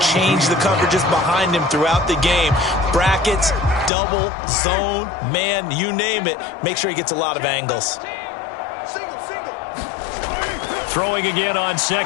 change the coverages behind him throughout the game. Brackets, double, zone, man, you name it. Make sure he gets a lot of angles. Throwing again on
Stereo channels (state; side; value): drops out; right; at 3.9 s